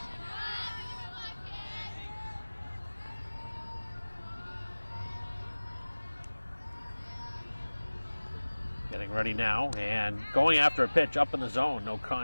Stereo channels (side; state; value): both; inverted; correlation -1.00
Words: Getting ready now and going after a pitch up in the zone, no